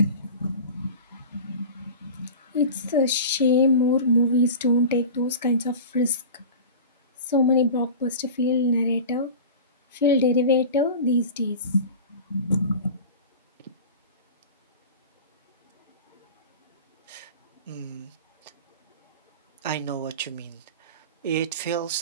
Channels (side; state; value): both; inverted; correlation -0.33